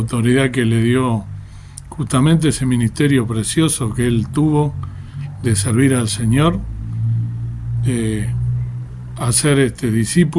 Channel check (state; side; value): identical; both; correlation 1.00